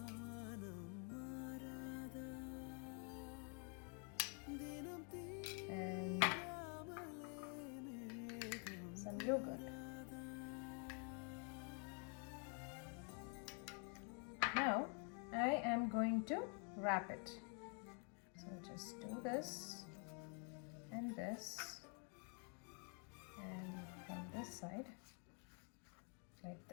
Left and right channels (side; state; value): right; quieter; 39.4 dB